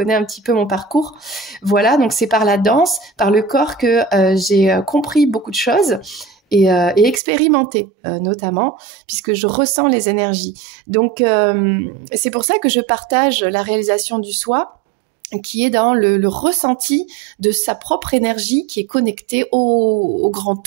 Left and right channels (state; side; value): drops out; left; at 7.2 s